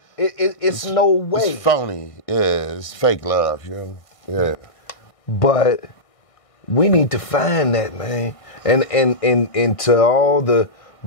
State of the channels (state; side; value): late; right; 1.6 ms